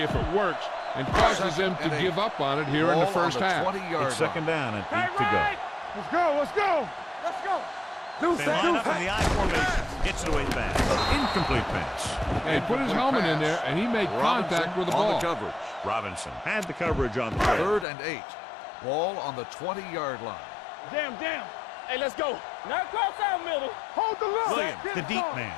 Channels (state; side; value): drops out; right; at 17.9 s